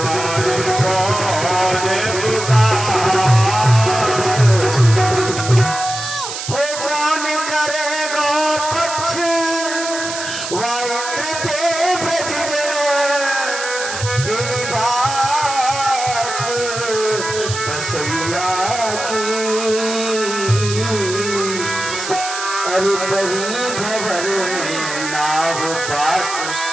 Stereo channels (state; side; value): noise; right; hiss, 7 dB below the sound